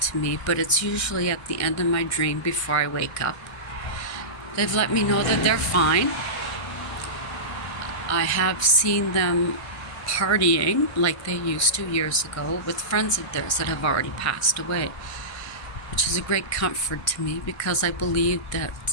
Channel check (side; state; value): right; late; 1.6 ms